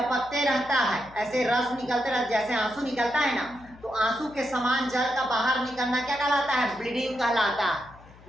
रहता है, ऐसे रस निकलते रहता है, जैसे आंसू निकलता है ना, तो आंसू के समान जल का बाहर निकलना क्या कहलाता है? ब्लीडिंग कहलाता है।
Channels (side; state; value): left; noise; hum, 23 dB below the sound